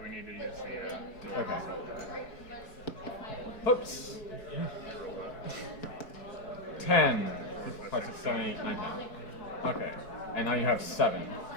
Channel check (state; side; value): late; right; 4.6 ms